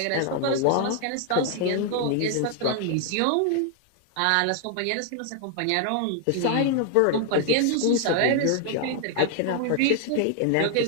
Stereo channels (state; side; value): different; both; correlation 0.00